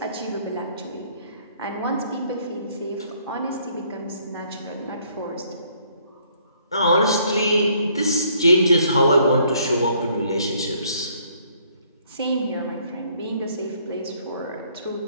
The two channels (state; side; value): inverted; both; correlation -0.65